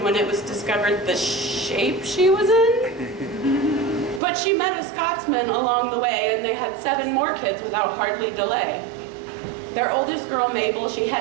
when it was discovered the shape she was in. But she met a Scotsman along the way, and they had 7 more kids without hardly delay. Their oldest girl, Mabel, she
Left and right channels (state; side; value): drops out; left; at 4.2 s